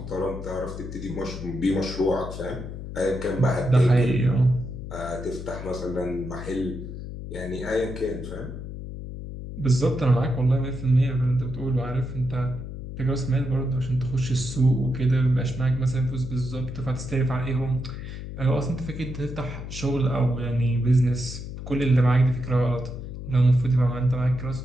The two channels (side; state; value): left; noise; hum, 9 dB below the sound